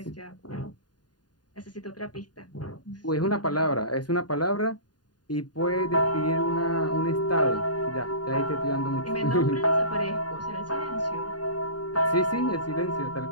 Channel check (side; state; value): right; late; 0.70 ms